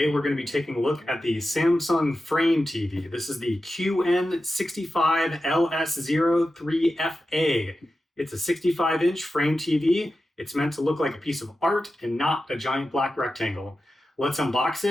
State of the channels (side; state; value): both; normal; correlation 0.92